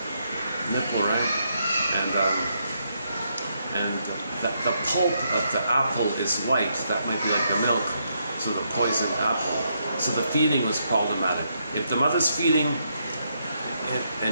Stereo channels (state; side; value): inverted; both; correlation -0.78